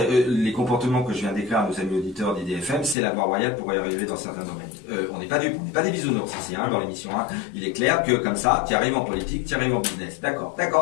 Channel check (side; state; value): right; drops out; at 3.0 s